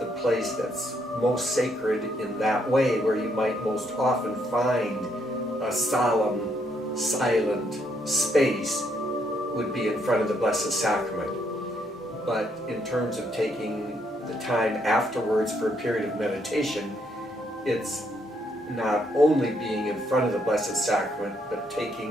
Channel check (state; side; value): normal; both; correlation 0.74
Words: place that's most sacred in that way, where you might most often find a solemn, silent space, would be in front of the Blessed Sacrament. But in terms of taking the time afterwards for a period of meditation, it's not only being in front of the Blessed Sacrament, but